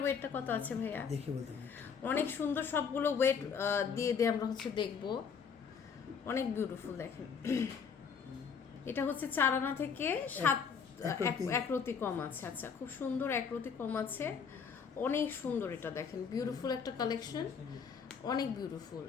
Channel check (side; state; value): right; quieter; 6.4 dB